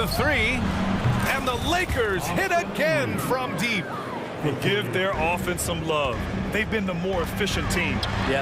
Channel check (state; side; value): identical; both; correlation 1.00